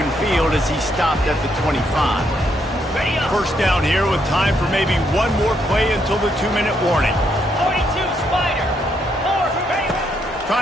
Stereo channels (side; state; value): both; normal; correlation 0.75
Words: field as he stopped at the 25. 1st down here with time for maybe one more play until the 2-minute warning. 42 Spider. 4.